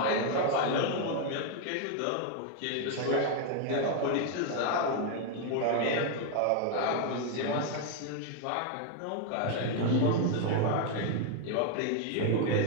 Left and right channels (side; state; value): both; different; correlation 0.00